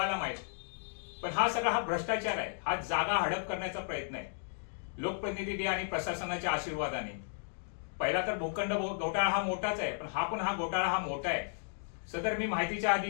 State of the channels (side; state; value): right; silent; digital silence